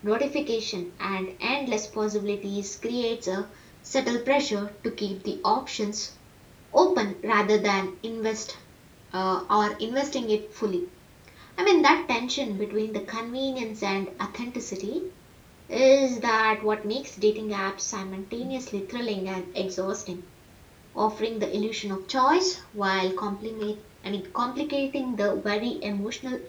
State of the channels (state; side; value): identical; both; correlation 1.00